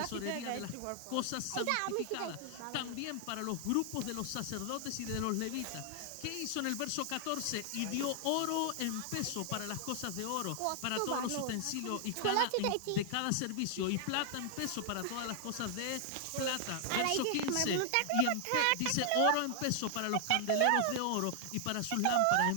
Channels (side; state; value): both; different; correlation 0.00